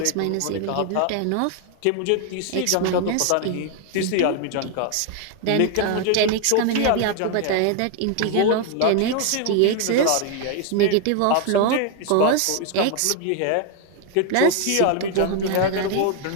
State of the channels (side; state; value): both; different; correlation 0.00